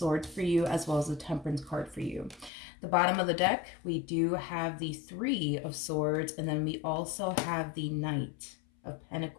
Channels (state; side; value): drops out; right; at 2.5 s